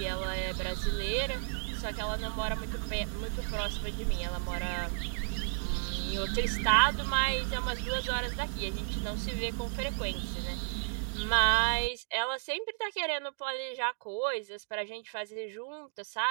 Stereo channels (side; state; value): left; silent; digital silence